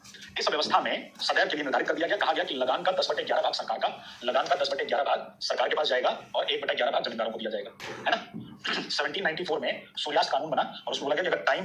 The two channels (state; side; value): identical; both; correlation 1.00